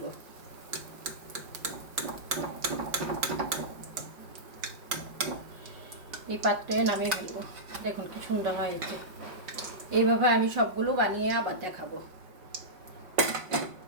এই পাত্রে নামিয়ে ফেলবো। দেখুন কি সুন্দর হয়েছে। এইভাবে আমি সবগুলো বানিয়ে আবার দেখাবো।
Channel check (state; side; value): late; left; 5.2 ms